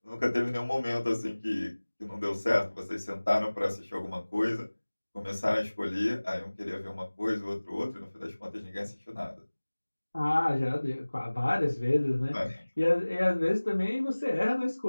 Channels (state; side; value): inverted; both; correlation -1.00